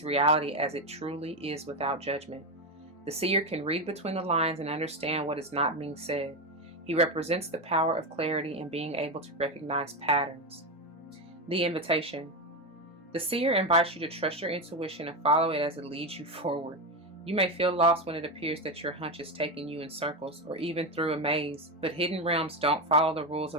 reality as it truly is without judgment. The seer can read between the lines and understand what is not being said. He represents the power of clarity and being able to recognize patterns. The invitation. The seer invites you to trust your intuition and follow it as it leads you forward. You may feel lost when it appears that your hunch is taking you in circles or even through a maze, but hidden realms don't follow the rules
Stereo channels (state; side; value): normal; both; correlation 0.13